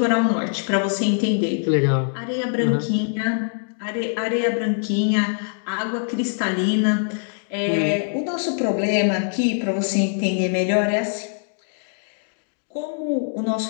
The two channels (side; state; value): right; silent; digital silence